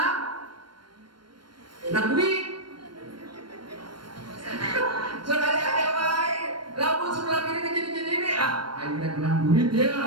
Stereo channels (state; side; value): late; left; 0.72 ms